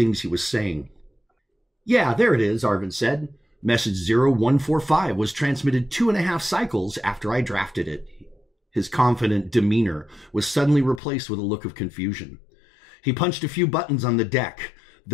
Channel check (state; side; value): drops out; right; at 11.0 s